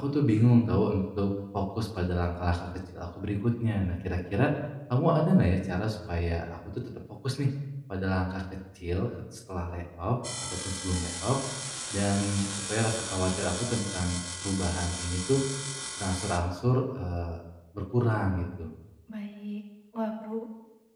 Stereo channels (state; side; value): identical; both; correlation 1.00